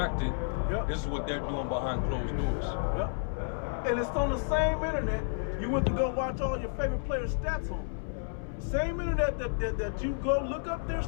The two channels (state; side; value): silent; right; 57 dB below the other